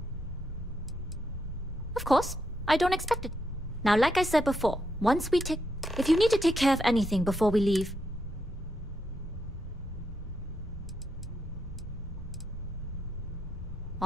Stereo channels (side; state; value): both; normal; correlation 0.81